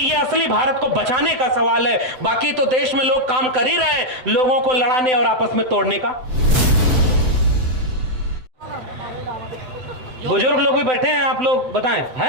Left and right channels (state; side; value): late; left; 7.8 ms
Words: असली भारत को बचाने का सवाल है। बाकी तो देश में लोग काम कर ही रहे हैं, लोगों को लड़ाने और आपस में तोड़ने का। बुजुर्ग लोग भी बैठे हैं, आप लोग बताएं, है